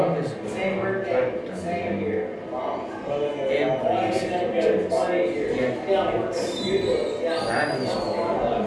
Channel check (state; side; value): identical; both; correlation 1.00